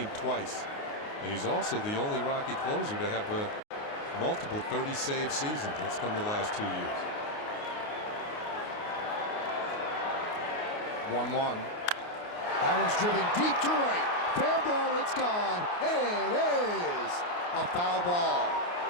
twice. And he's also the only Rocky closer to have multiple 30-save seasons. That's come the last 2 years. 1-1. That one's driven deep to right. Fair ball, it's gone. It is a foul ball.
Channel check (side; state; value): right; late; 28 ms